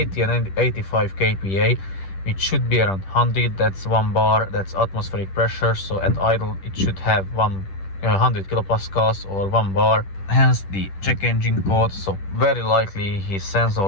85 kPa, which should be around 100. That's 1 bar, that's atmospheric pressure. So at idle it should have 100 kilopascals or 1 bar, hence the check engine code. So very likely his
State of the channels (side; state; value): right; late; 10 ms